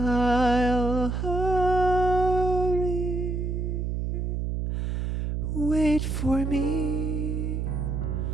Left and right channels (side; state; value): right; noise; hum, 1 dB below the sound